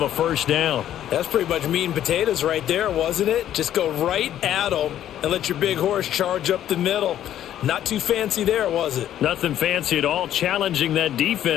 a first down. That's pretty much meat and potatoes right there, wasn't it? Just go right at him and let your big horse charge up the middle. Not too fancy there, was it? Nothing fancy at all, challenging that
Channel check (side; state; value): right; quieter; 11.4 dB